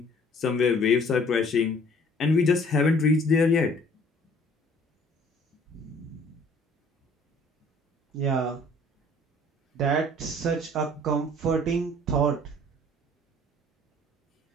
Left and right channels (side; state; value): both; normal; correlation 0.55